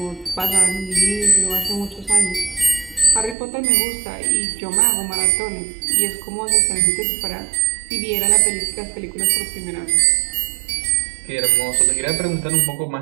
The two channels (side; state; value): left; drops out; at 3.4 s